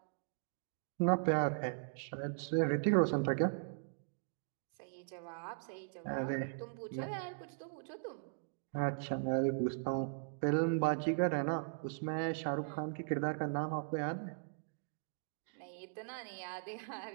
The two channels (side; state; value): left; silent; digital silence